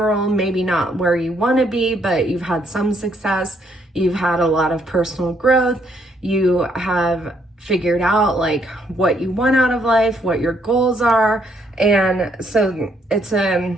maybe not where you want to be, but you've had some success, you've had a lot of personal growth, you have figured out like what you want out of life, what your goals are. And so it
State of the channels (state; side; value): normal; both; correlation 0.71